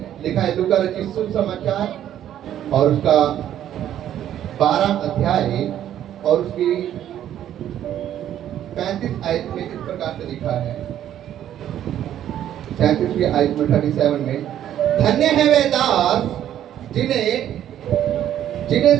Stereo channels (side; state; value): left; quieter; 11.1 dB